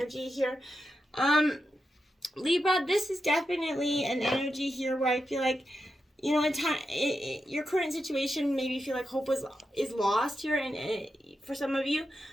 here. Libra, this is definitely an energy here where I feel like, your current situation, maybe you feel like hope is lost here, and for some of you.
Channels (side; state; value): both; normal; correlation 0.88